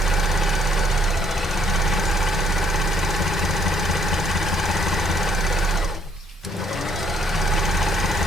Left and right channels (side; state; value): both; normal; correlation 0.66